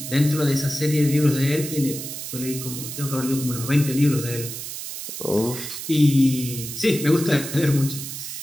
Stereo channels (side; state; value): right; noise; hiss, 8 dB below the sound